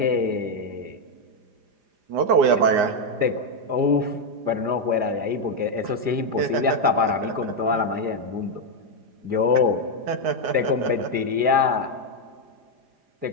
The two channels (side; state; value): left; late; 4.9 ms